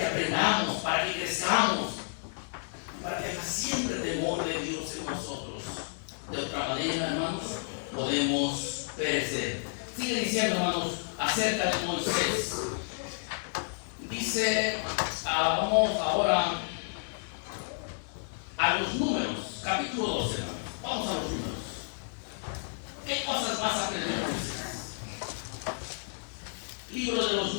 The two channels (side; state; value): right; silent; digital silence